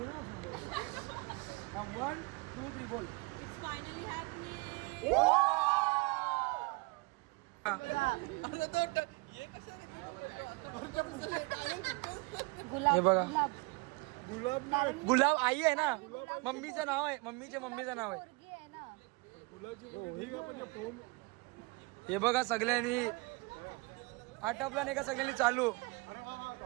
ना 1 2 3 बोल. हे बघा गुलाब आई आहे ना, मम्मीचं नाव आहे, मम्मीचं नाव आहे. हे बघा सगळ्यांनी आटपला नाही का, सगळ्यांनी चालू.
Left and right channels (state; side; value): quieter; left; 27.3 dB